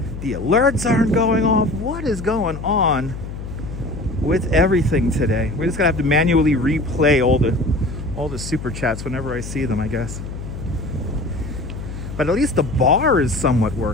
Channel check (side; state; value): left; noise; hum, 9 dB below the sound